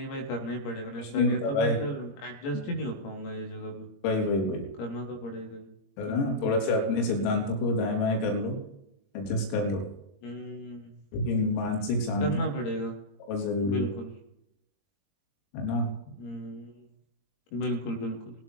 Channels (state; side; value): late; right; 21 ms